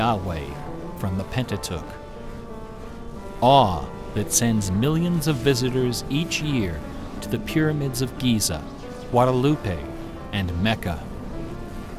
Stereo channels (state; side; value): identical; both; correlation 1.00